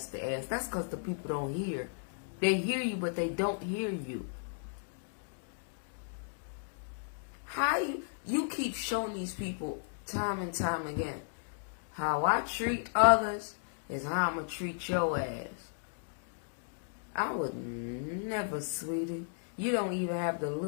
ass. That's because the people don't hear. They hear you, but they don't hear you. How you keep showing these people time and time again, how I treat others is how I'm going to treat your ass. I would never, sweetie. You don't even have the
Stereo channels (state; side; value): silent; right; digital silence